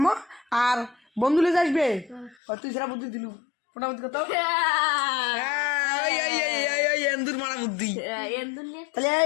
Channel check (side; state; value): right; drops out; at 2.4 s